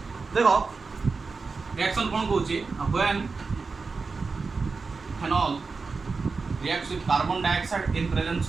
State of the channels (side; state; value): left; quieter; 4.4 dB